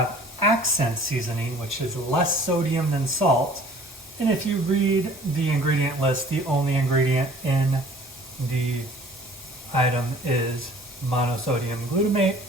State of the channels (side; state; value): both; normal; correlation 0.51